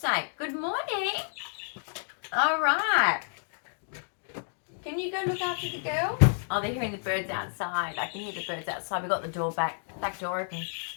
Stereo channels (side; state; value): right; silent; digital silence